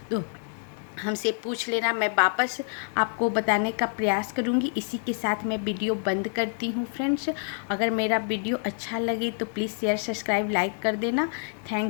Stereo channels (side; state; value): right; silent; 60 dB below the other